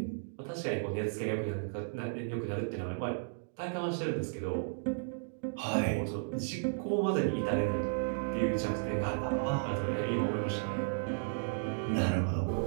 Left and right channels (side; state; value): left; silent; digital silence